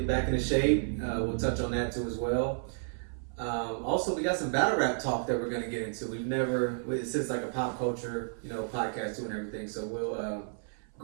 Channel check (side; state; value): left; silent; 57 dB below the other